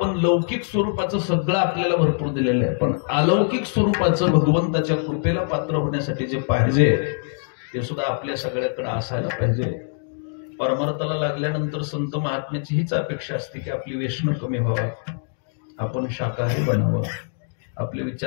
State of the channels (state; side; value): silent; right; 58 dB below the other